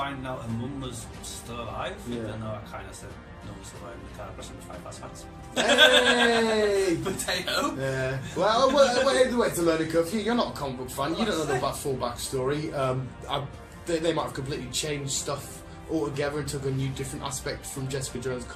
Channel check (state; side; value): identical; both; correlation 1.00